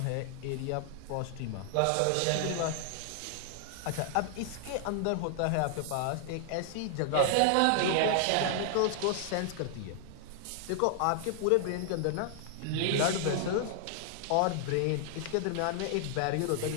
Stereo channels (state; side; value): different; both; correlation 0.00